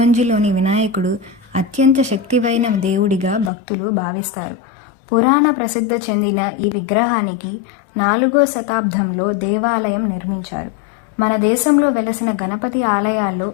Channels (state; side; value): drops out; right; at 3.5 s